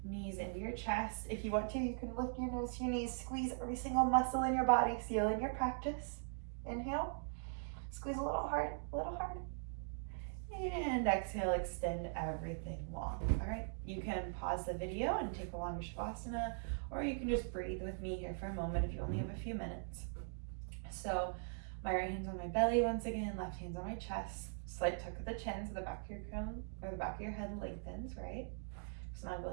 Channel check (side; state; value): left; silent; digital silence